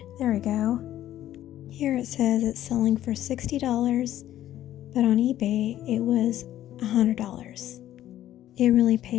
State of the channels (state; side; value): quieter; right; 12.7 dB